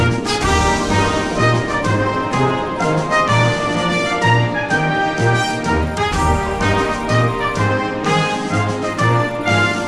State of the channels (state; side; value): identical; both; correlation 1.00